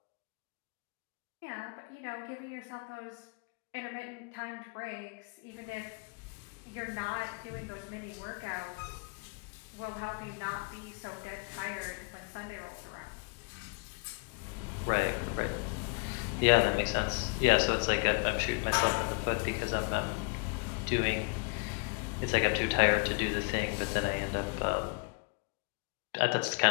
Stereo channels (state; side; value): quieter; right; 34.8 dB